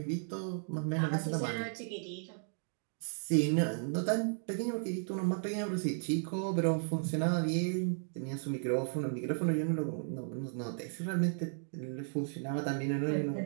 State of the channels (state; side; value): silent; left; digital silence